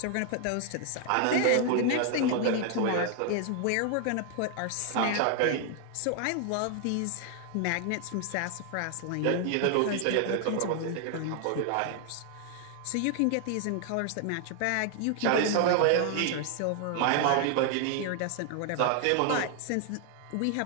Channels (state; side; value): different; both; correlation 0.00